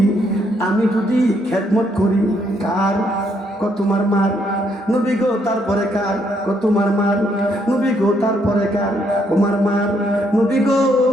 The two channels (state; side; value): normal; both; correlation 0.72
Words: আমি যদি খেদমত করি কার? তোমার মার। নবী গো তারপরে কার? তোমার মার। নবী গো তারপরে কার? তোমার মার। নবী গো